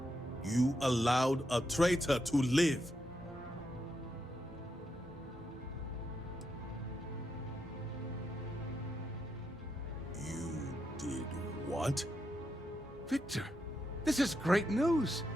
You allowed a traitor to live. You did what? Victor, this is great news.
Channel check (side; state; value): both; normal; correlation 0.83